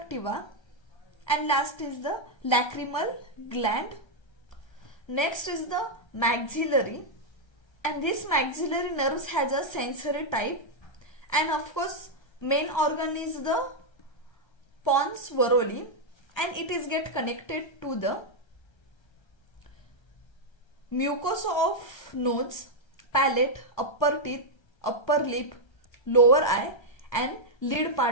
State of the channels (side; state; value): right; late; 1.3 ms